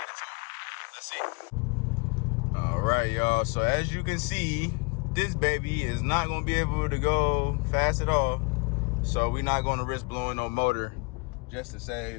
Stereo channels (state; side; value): quieter; right; 31.3 dB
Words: it towed. Let's see. All right, y'all. So as you can see, this baby is not gonna be able to go fast at all. So we're not gonna risk blowing no motor just to